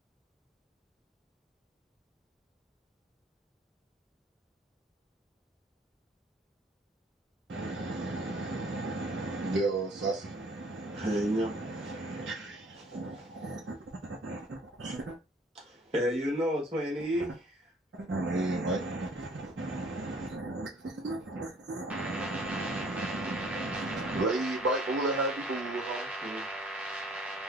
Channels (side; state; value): both; normal; correlation 0.56